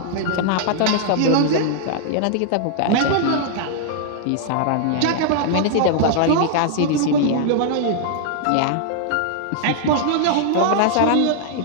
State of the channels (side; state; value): both; different; correlation -0.01